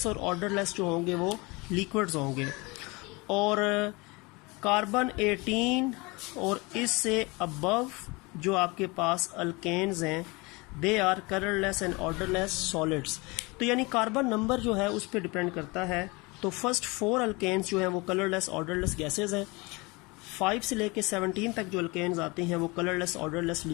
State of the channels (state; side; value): quieter; right; 25.8 dB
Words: और ऑर्डरलेस जो होंगे वो लिक्विड्स होंगे। और कार्बन 18 और इससे अबव जो आपके पास अल्केन्स हैं they are colourless and odourless solids. तो यानी कार्बन नंबर जो है उस पर डिपेंड करता है। तो फर्स्ट 4 अल्केन्स जो हैं वो कलरलेस ऑर्डरलेस गैसेस हैं, 5 से लेके 17 तक जो अल्केन्स आते हैं वो कलरलेस ऑर्डरलेस